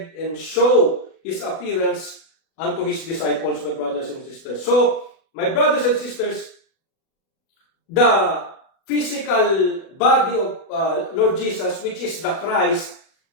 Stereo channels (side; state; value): right; late; 37 ms